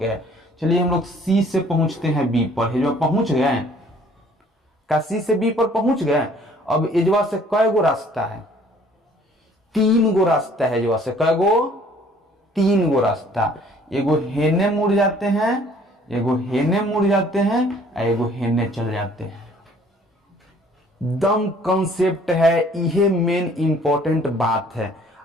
है। चलिए हम लोग सी से पहुंचते हैं बी पर, जो पहुंच गए का सी से बी पर पहुंच गए। अब एजवा से कय गो रास्ता है, 3 गो रास्ता है। एजवा से कय गो, 3 गो रास्ता। एगो हेने मुड़ जाते हैं, एगो हेने मुड़ जाते हैं, एगो हेने चल जाते हैं। दम कंसेप्ट है, यह मेन इंपॉर्टेंट बात है।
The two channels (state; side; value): normal; both; correlation 0.57